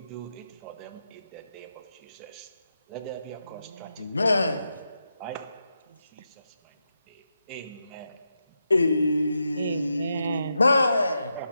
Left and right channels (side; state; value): both; inverted; correlation -0.86